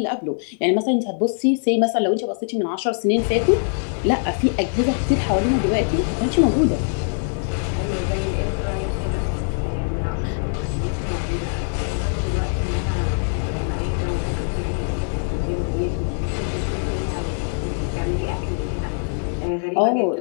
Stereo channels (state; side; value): silent; right; 64 dB below the other